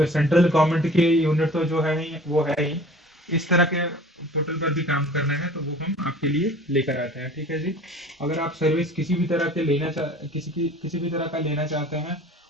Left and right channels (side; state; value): both; normal; correlation 0.46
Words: central government के यूनिट तो जो है ही वो है ही, इस तरह के पोर्टल पर भी काम करना है, तो वो हम आपके लिए लेकर आते हैं, ठीक है जी। अगर आप सर्विस किसी भी तरह के किसी भी तरह का लेना चाहते हैं,